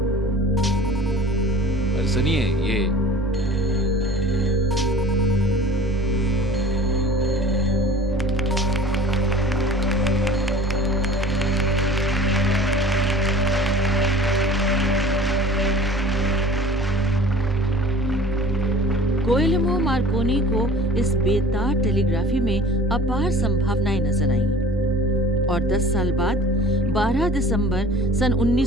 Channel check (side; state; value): right; noise; rumble, 21 dB below the sound